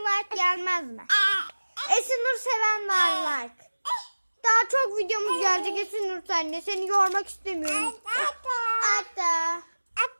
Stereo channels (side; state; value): both; inverted; correlation -1.00